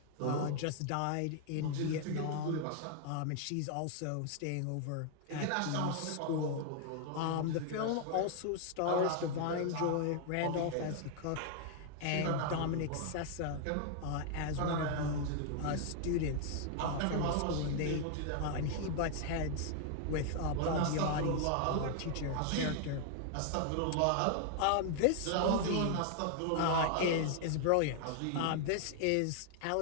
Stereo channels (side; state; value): both; different; correlation 0.00